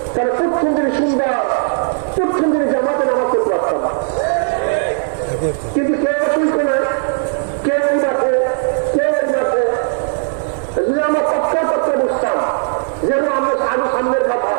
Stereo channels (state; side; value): silent; left; digital silence